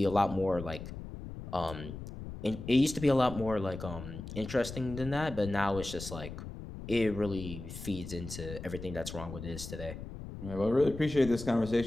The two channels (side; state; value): left; noise; rumble, 10 dB below the sound